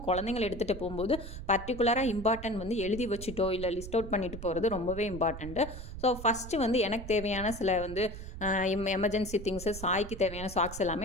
குழந்தைங்களை எடுத்துகிட்டு போகும்போது பர்டிகுலராக இம்பார்ட்டன்ட் வந்து எழுதி வச்சுட்டோ இல்லை லிஸ்ட் அவுட் பண்ணிட்டு போகிறது ரொம்பவே இம்பார்ட்டண்ட்டு. ஸோ ஃபஸ்ட்டு வந்து எனக்கு தேவையான சில வந்து எமர்ஜென்சி திங்ஸு, சாய்க்கு தேவையான சாக்ஸ்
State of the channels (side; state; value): right; noise; rumble, 10 dB below the sound